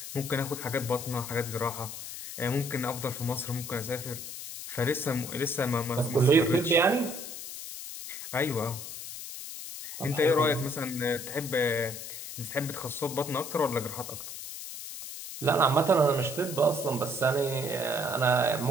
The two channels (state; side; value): noise; left; hiss, 9 dB below the sound